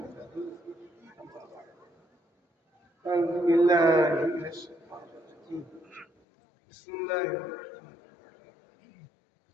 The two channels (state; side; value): drops out; right; at 6.1 s